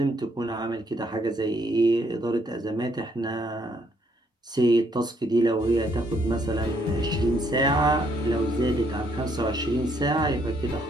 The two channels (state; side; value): normal; both; correlation 0.70